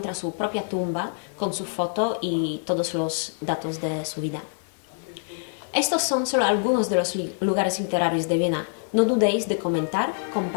su propia tumba con su foto y todos los datos de su vida. Estos son solo algunos de los lugares literarios de Viena. No dudéis de comentar,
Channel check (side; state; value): right; silent; 61 dB below the other